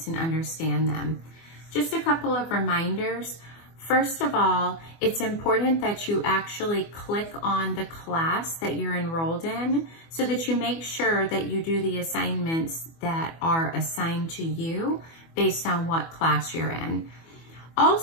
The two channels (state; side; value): late; right; 24 ms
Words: and understand them. Just a couple of reminders. First of all, it's important that you actually click on the class that you're enrolled in so that you make sure that you do the assignments that are assigned to you based on what class you're in.